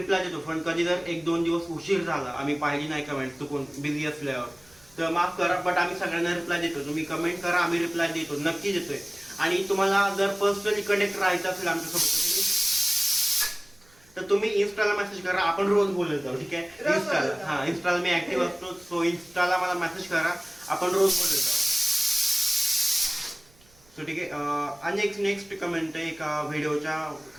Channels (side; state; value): right; noise; rumble, 30 dB below the sound